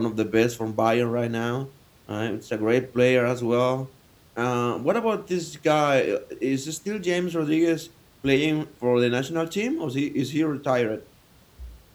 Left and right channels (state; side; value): identical; both; correlation 1.00